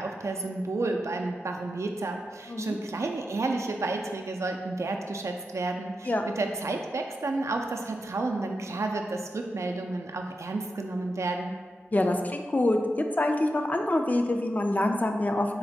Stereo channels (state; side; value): normal; both; correlation 0.87